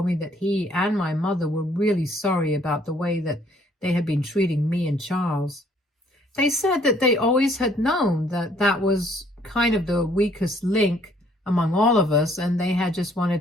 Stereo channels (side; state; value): both; normal; correlation 0.63